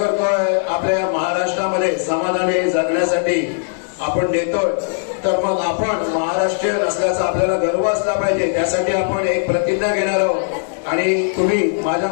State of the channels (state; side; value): silent; right; digital silence